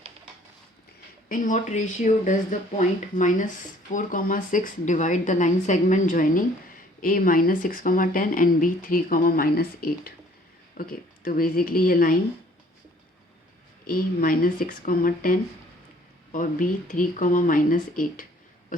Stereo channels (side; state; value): both; normal; correlation 0.57